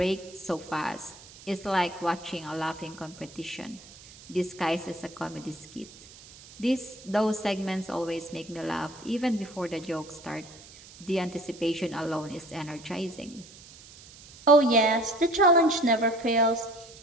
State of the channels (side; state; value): right; noise; hiss, 20 dB below the sound